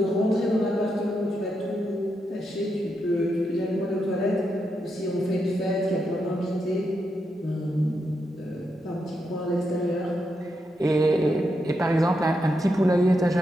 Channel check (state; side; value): normal; both; correlation 0.84